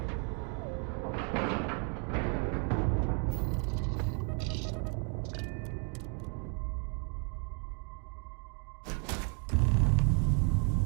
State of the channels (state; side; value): quieter; left; 39.7 dB